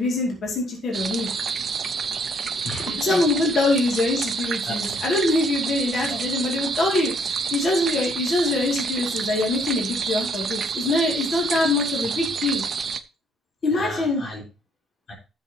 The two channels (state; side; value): normal; both; correlation 0.66